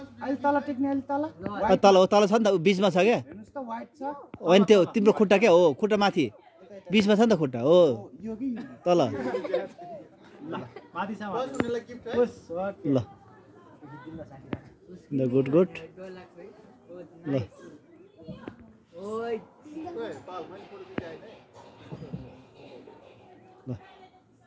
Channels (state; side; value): identical; both; correlation 1.00